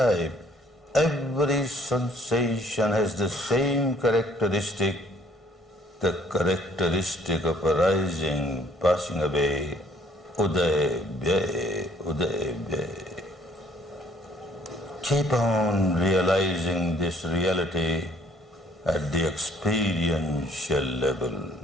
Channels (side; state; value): both; normal; correlation 0.61